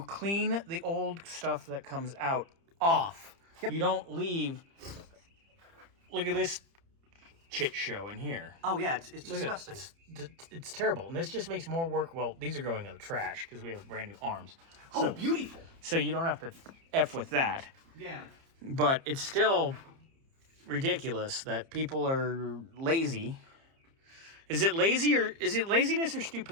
the old stuff that comes out off. Yep. You don't leave. Look at this chit show in here. Oh yeah, it's disgusting. It's terrible, and this just makes more work. Well, these are going in the trash because we have brand new arms. So, oh, beautiful! So you don't have to F with that. Yeah. But it's still ridiculous that people are lazy. Is it laziness or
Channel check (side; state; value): left; late; 30 ms